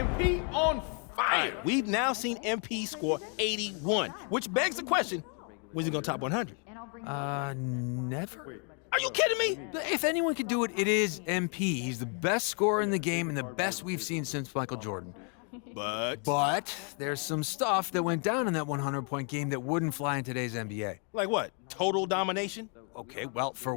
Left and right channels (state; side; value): quieter; right; 39.6 dB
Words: On fire. Right, we've now seen MP score 81, which begs the question, when's he going to top 100? Never. Are you kidding me? If anyone could do it, it is MP. He's the best scorer in the game and the best we've seen since Michael Jordan. But there's some stuff that went down in that 100-point game that wouldn't fly in today's NBA. Like what? Total domination? Okay, well, for